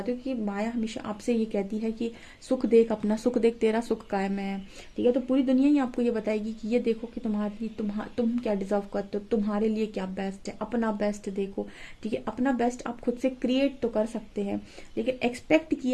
हो कि माया हमेशा आपसे ये कहती है कि सुख देख, अपना सुख देख, तेरा सुख कायम है, ठीक है। तो पूरी दुनिया ही आपको ये बताएगी कि ये देखो कि तुम क्या डिजर्व करते हो, तुम्हारे लिए क्या बेस्ट है, अपना बेस्ट देखो, ठीक है। अपना बेस्ट आप खुद से क्रिएट तो कर सकते हैं, लेकिन एक्सपेक्ट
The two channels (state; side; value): identical; both; correlation 1.00